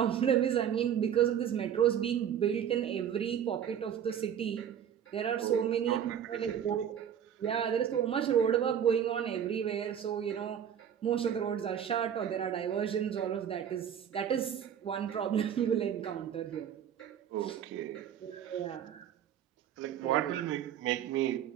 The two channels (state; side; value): quieter; left; 9.1 dB